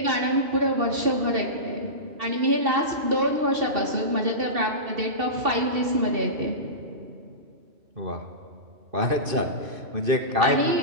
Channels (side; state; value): left; late; 2.5 ms